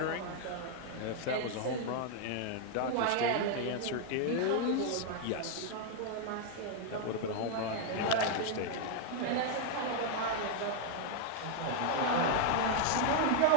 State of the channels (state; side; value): different; both; correlation 0.00